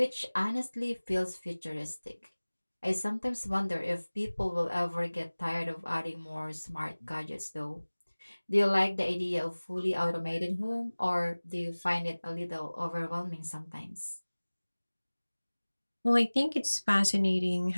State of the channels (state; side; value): inverted; both; correlation -1.00